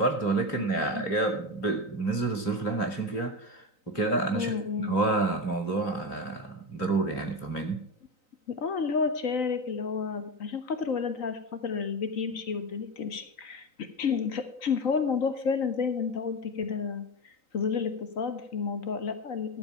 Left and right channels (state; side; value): late; right; 3.9 ms